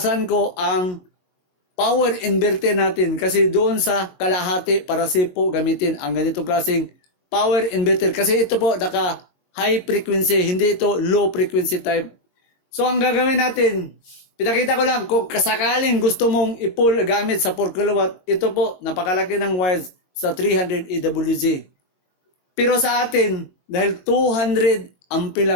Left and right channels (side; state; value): right; late; 22 ms